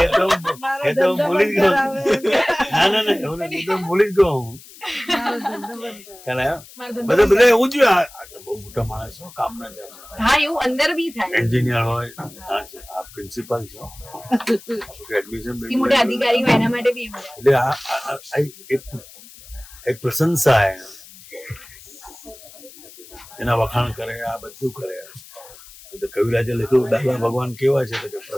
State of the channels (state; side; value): noise; left; hiss, 20 dB below the sound